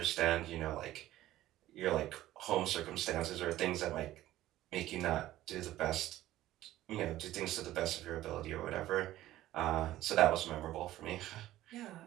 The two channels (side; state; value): left; quieter; 14.7 dB